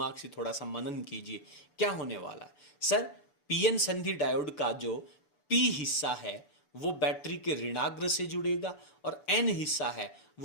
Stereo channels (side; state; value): right; late; 6.9 ms